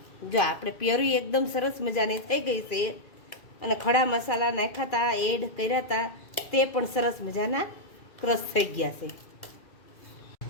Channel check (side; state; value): right; late; 2.3 ms